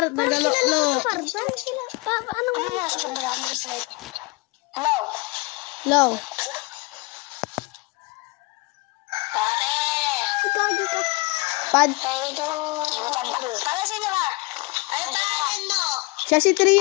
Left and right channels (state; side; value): quieter; right; 25.5 dB